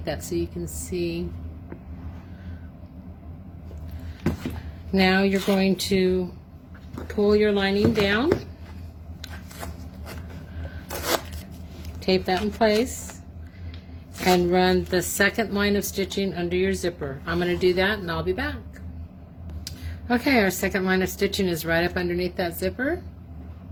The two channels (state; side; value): identical; both; correlation 1.00